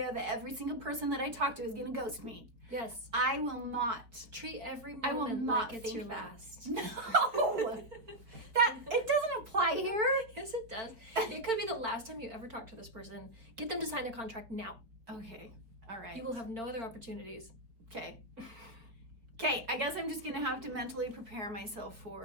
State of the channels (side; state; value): left; late; 4.7 ms